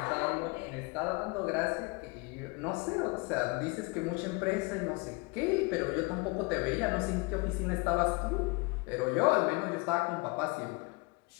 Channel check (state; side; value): quieter; right; 27.8 dB